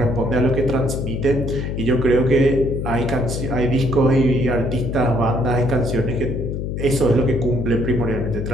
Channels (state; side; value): noise; left; hum, 3 dB below the sound